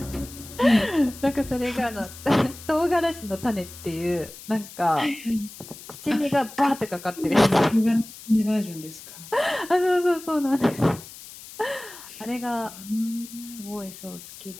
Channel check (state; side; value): noise; left; hiss, 16 dB below the sound